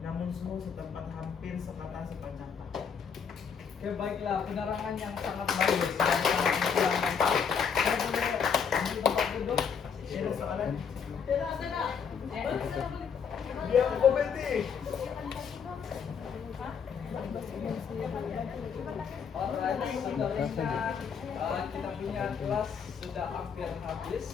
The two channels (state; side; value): quieter; right; 6.7 dB